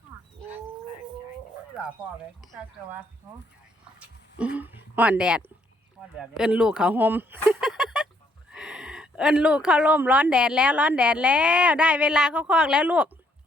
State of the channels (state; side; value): normal; both; correlation 0.69